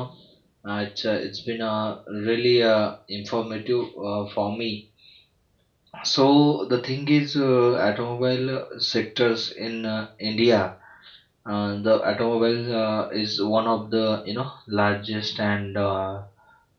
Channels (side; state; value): both; identical; correlation 1.00